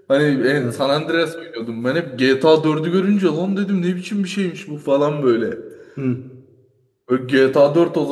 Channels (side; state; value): both; identical; correlation 1.00